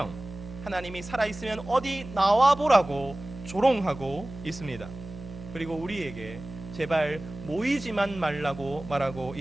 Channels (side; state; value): right; noise; hum, 13 dB below the sound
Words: 하나님이 살아있으면 어디 나와보라고 조롱하고 있습니다. 그리고 우리에게 제발 모이지만 말라고 말하고